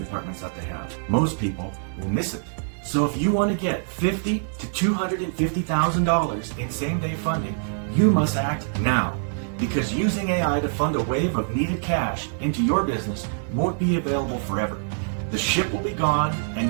that they have. Most people will miss it. So if you want to get $50,000 to $250,000 in same-day funding, you must act now. Because using AI to fund a wave of needed cash into your business won't be available forever. The ship will be gone, and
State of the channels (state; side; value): silent; left; digital silence